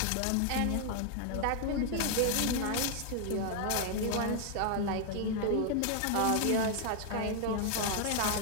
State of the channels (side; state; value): both; different; correlation 0.00